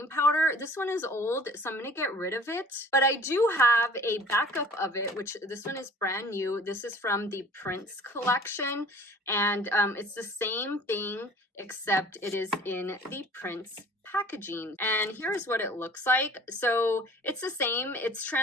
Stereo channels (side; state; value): both; normal; correlation 0.48